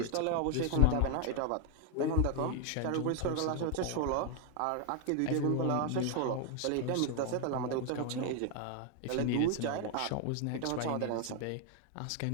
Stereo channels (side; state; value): both; different; correlation 0.01